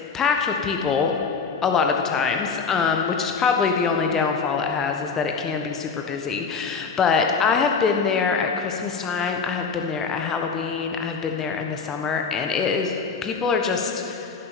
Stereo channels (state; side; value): quieter; right; 5.3 dB